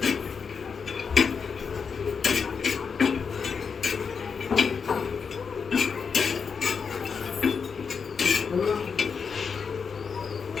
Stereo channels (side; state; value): right; quieter; 5.9 dB